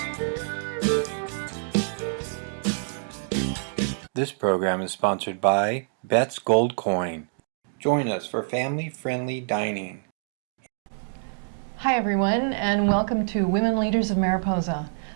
program is sponsored by Bet's Gold Coin. Join us for family-friendly dining. Hi everyone, and welcome to Women Leaders of Mariposa.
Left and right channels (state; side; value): silent; left; digital silence